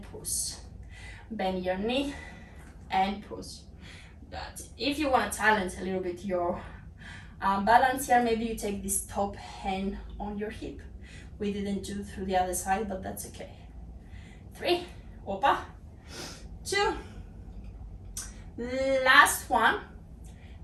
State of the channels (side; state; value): both; identical; correlation 1.00